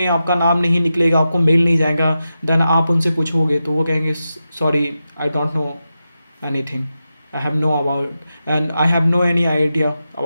आपका नाम नहीं निकलेगा, आपको मेल नहीं जाएगा, देन आप उनसे पूछोगे तो वो कहेंगे sorry I don't know anything, I have no about and I have no any idea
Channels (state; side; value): inverted; both; correlation -0.90